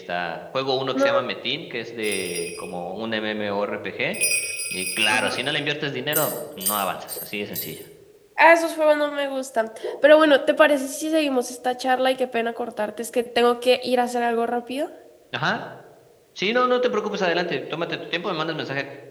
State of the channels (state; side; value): identical; both; correlation 1.00